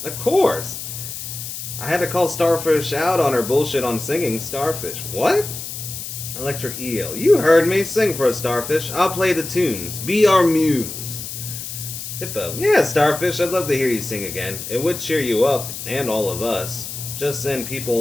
of course. I had to call Starfish out on her bullshit on singing. Starfish, what? Electric eel, you heard me. Sing for us, Starfish. I'll play the tunes. Be our muse. Hippo, yeah, Starfish, I'd love to hear you sing again. It would cheer you up, and all of us. Just then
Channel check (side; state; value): left; noise; hiss, 8 dB below the sound